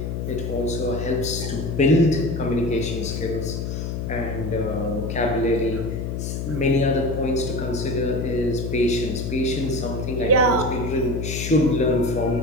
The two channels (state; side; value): noise; left; hum, 3 dB below the sound